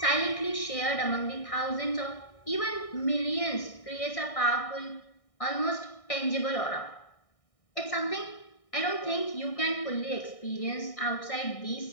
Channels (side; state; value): right; late; 1.6 ms